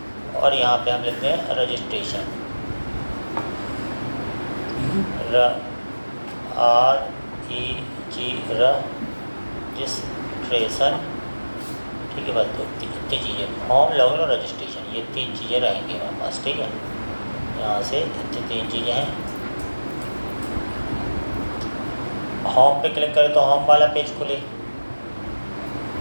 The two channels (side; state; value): both; inverted; correlation -1.00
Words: और यहाँ पे हम लिखते हैं रजिस्ट्रेशन, रजिस्ट्रेशन। ठीक है, बस दो इतनी चीज़ें, होम, लॉगिन और रजिस्ट्रेशन, ये 3 चीज़ें रहेंगी हमारे पास। ठीक है, यहाँ से इतनी 3 चीज़ें हैं। होम पे क्लिक करें तो होम वाला पेज खुले,